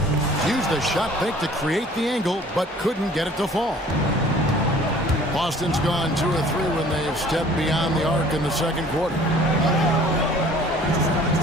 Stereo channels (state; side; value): normal; both; correlation 0.51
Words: Used the shot fake to create the angle, but couldn't get it to fall. Boston's gone 2 of 3 when they've stepped beyond the arc in the second quarter.